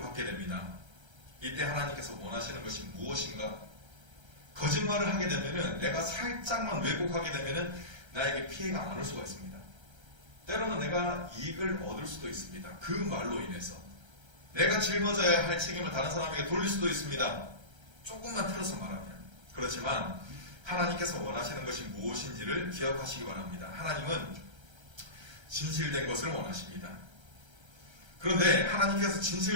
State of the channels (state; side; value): late; left; 1.3 ms